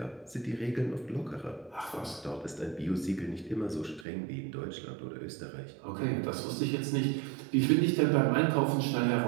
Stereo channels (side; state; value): left; drops out; at 4.0 s